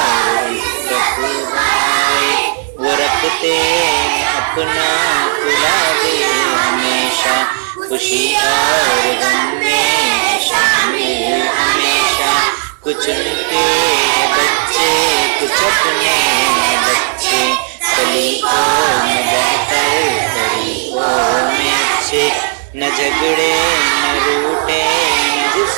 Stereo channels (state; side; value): silent; left; digital silence